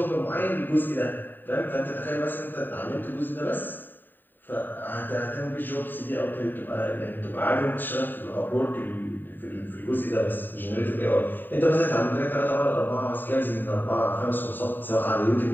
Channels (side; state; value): right; late; 0.092 ms